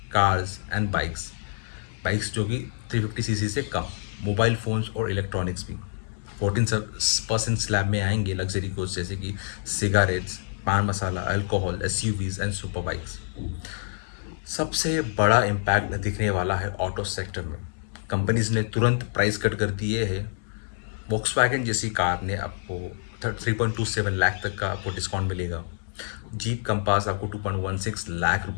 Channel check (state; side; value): silent; right; digital silence